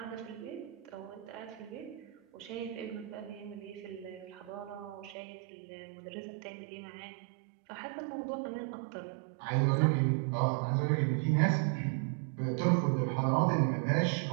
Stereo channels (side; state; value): left; drops out; at 5.2 s